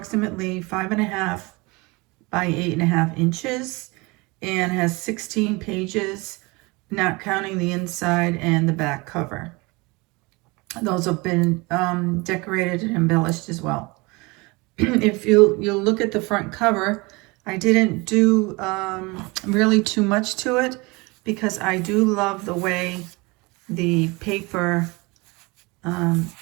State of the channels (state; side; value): quieter; left; 25.4 dB